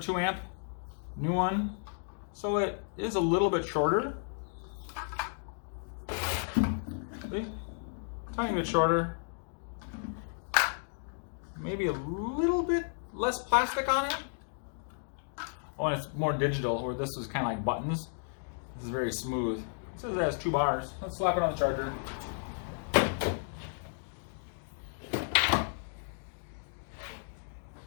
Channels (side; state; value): right; silent; digital silence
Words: amp, new one. So it is a little bit shorter. See? Tiny bit shorter. Maybe a little bit less plastic on it. Oh, and it's more digital, where this was kind of like buttons. This is very smooth. It says it has 2 bars. Let's slap it on the charger.